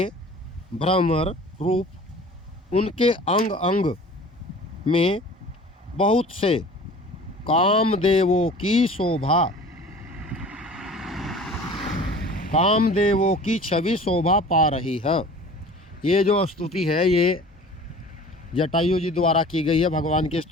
भ्रमर रूप, उनके अंग अंग में बहुत से कामदेवों की शोभा, कामदेवों की छवि शोभा पा रही है। ये जो स्तुति है ये जटायु जी द्वारा की गई है, भगवान की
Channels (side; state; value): both; normal; correlation 0.43